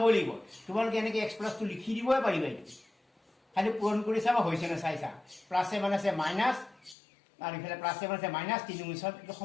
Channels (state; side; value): drops out; right; at 7.0 s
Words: লাগিব। তোমালোকে এনেকৈ x+2 লিখি দিবই পাৰিবা। এইটো খালি পূৰণ কৰি চাবা হৈছে নে চাইছা। প্লাছে মানে আছে মাইনাছ আৰু ইফালে প্লাছে মানে আছে মাইনাছ 3 × 7 এইটো